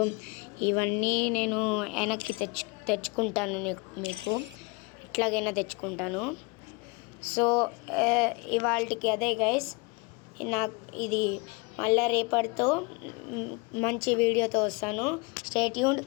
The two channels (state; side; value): quieter; right; 28.2 dB